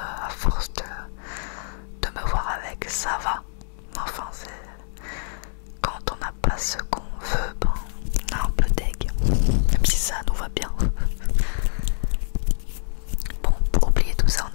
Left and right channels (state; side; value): silent; right; digital silence